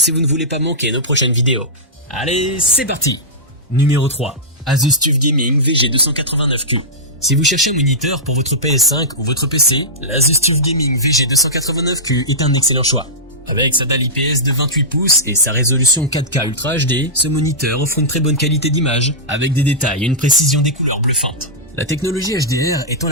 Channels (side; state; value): both; normal; correlation -0.13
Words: vous ne voulez pas manquer nos prochaines vidéos. Allez, c'est parti! Numéro 3. Asus TUF Gaming VG289Q. Si vous cherchez un moniteur pour votre PS5 ou votre PC, l'Asus TUF Gaming VG289Q est un excellent choix. Avec sa dalle IPS de 28 pouces et sa résolution 4K Ultra HD, ce moniteur offre une très bonne qualité d'image, avec des détails et une précision des couleurs bluffantes. La technologie HDR étend